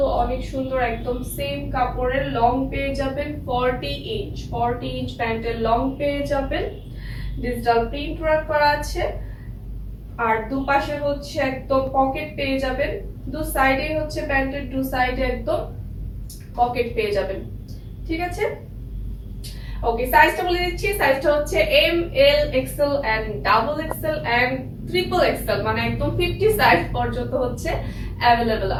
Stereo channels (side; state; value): both; identical; correlation 1.00